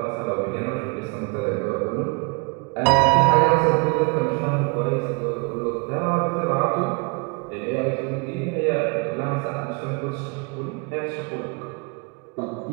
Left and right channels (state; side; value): quieter; left; 31.3 dB